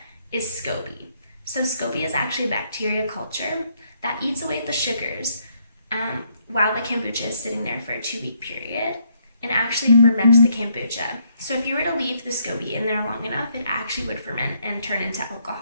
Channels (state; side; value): inverted; both; correlation -0.72